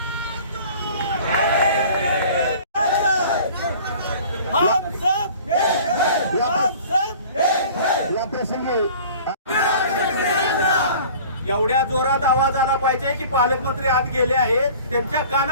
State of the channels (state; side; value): inverted; both; correlation -0.45